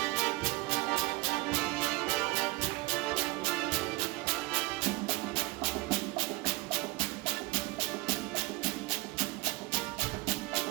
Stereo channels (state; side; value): quieter; left; 21.7 dB